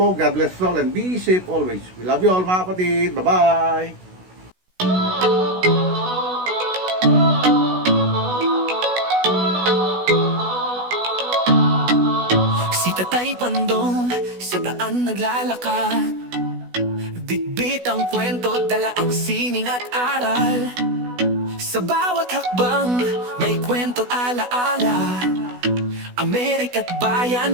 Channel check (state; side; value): late; left; 16 ms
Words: God bless us all and be safe always. We love you all mga kapatid. Bye-bye! Si Tatay Pandong sa daan naglalakad, bitbit ang kwento, dala ang sining at aral. Sa bawat hakbang may kwento alaala, Amerika't